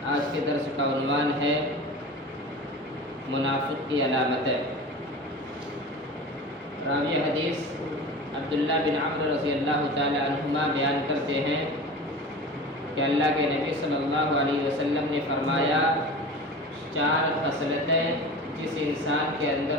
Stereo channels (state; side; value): normal; both; correlation 0.34